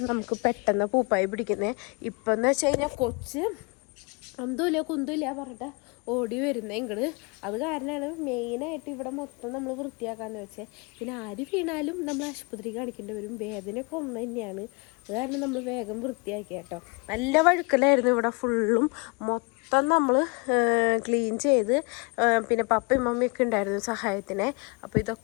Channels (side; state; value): right; quieter; 30.9 dB